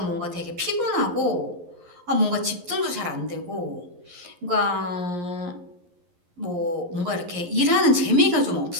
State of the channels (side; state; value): left; late; 11 ms